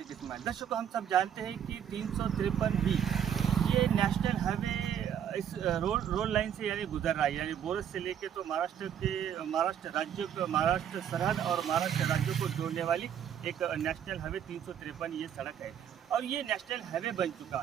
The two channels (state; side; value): quieter; left; 9.1 dB